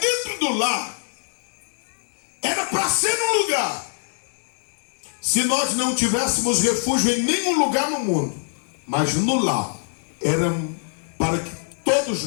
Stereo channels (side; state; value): right; silent; digital silence